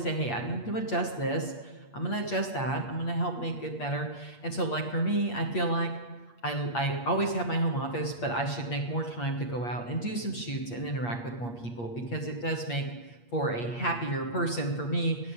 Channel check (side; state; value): right; late; 8.5 ms